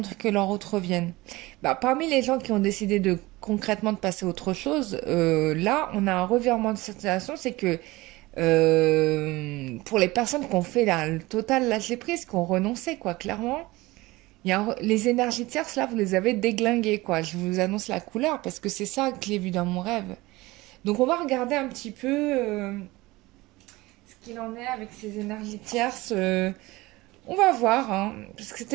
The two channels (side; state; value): left; quieter; 20.5 dB